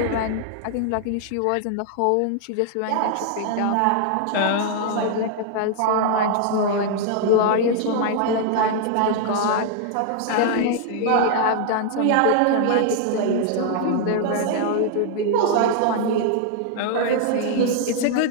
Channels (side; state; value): both; different; correlation 0.00